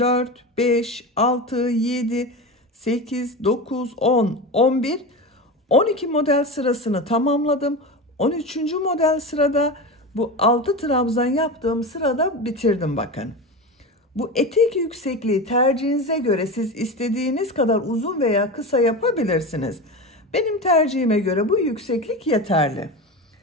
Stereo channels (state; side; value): normal; both; correlation 0.24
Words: 5, 6, 7, 8, 9, 10, 11. 12 model sırasını tamamladım. 13. model sırada bu 6 trabzan yaptığım sırada bitirdim bakın. Bu etek yüksekliği tercihinize göre siz istediğiniz kadar uzun veya kısa yapabilirsiniz. Benim tercihime göre bu yükseklik yeterli.